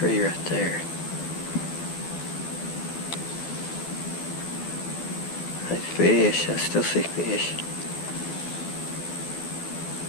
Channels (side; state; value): right; late; 12 ms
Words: right there. There's fish. I still see fish.